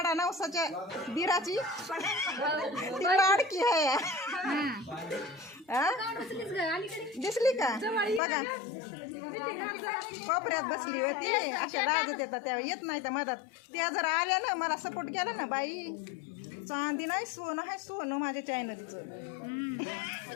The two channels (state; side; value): drops out; right; at 8.2 s